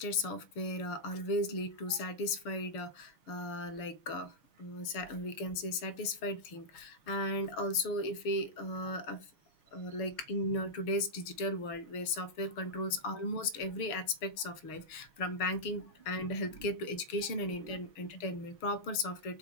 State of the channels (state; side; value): late; right; 6.4 ms